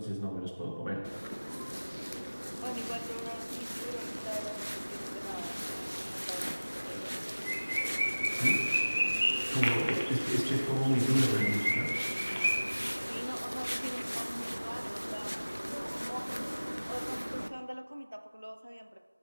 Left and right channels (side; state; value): both; inverted; correlation -1.00